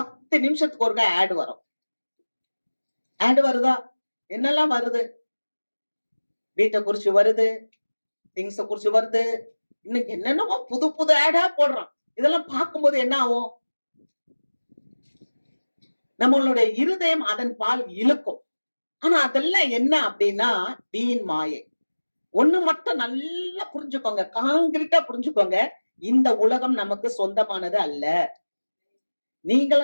நிமிஷத்துக்கு ஒருக்கா ஆட் வரும். ஆட் வருதா? என்னெல்லாம் வருது? வீட்டை குறிச்சு வருது, திங்ஸ குறிச்சு வருது, இன்னைக்கு என்னென்னமோ புது புது ஆடா போடுறான். இதெல்லாம் பார்க்கும்போது என்ன ஆகும்? நம்மளுடைய இருதயம் அதன் பால் இழுக்கும். ஆனா அதெல்லாம் என்ன அப்படின்னா வீண் மாயை. ஒண்ணு மட்டும் நல்லா புரிஞ்சுக்கோங்க, காங்கிரீட்டா புரிஞ்சுக்கோங்க. இந்த உலகம் நமக்கு சொந்தமானது அல்ல.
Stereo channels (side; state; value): both; inverted; correlation -1.00